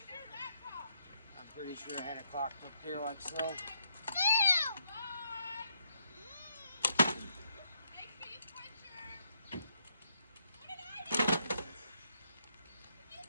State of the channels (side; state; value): both; inverted; correlation -0.75